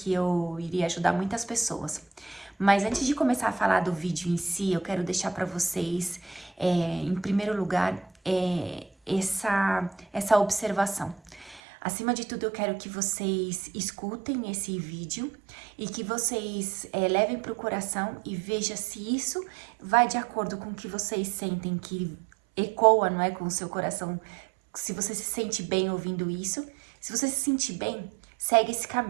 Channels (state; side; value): drops out; left; at 11.6 s